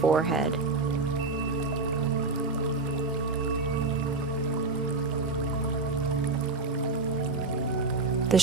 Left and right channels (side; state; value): left; quieter; 3.7 dB